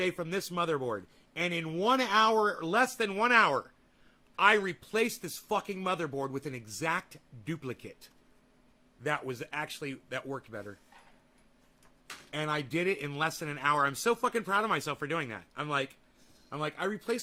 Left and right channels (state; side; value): identical; both; correlation 1.00